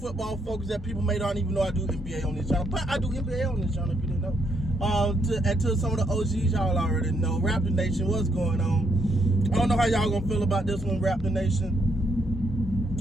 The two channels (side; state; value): both; normal; correlation 0.75